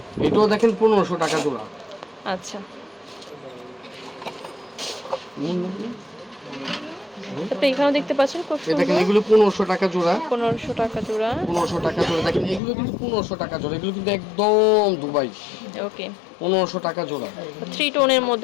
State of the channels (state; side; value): drops out; right; at 12.6 s